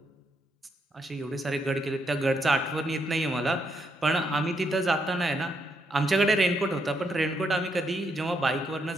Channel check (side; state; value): both; normal; correlation 0.77